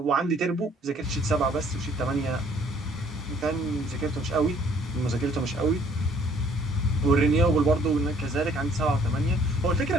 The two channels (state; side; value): normal; both; correlation 0.60